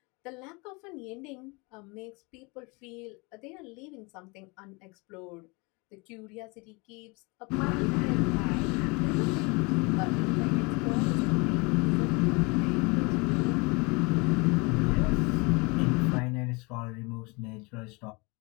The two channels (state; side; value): quieter; right; 28.1 dB